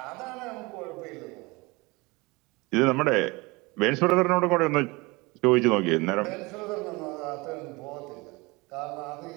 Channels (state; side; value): quieter; left; 24.5 dB